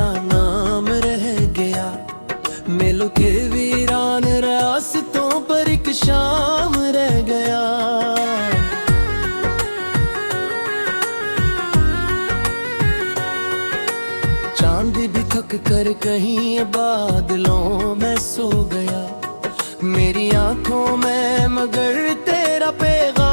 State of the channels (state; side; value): inverted; both; correlation -1.00